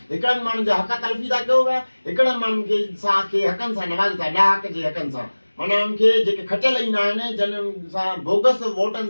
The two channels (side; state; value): both; inverted; correlation -1.00